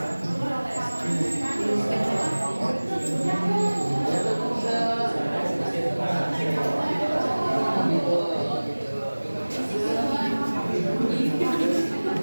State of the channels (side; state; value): both; inverted; correlation -1.00